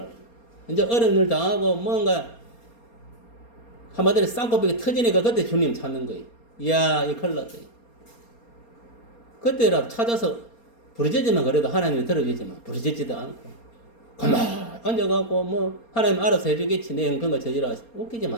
이제 어려운 일 당하고 뭔가 한마디로 쌍꺼풀이 터지니까 그때 주님 찾는 거예요. 이야 이 큰일 났다. 그때라도 찾아서 부르짖으면 그래도 하나님이 들어주지만 부르짖지도 않고 가만히 앉아갖고 뭐 하나님 알아서 해주겠지 내 형편과 저지라 웃기지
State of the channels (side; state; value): right; late; 4.3 ms